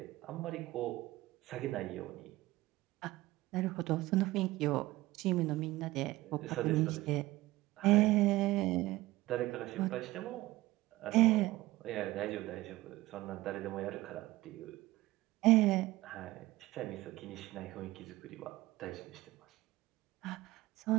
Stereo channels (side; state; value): left; quieter; 18.1 dB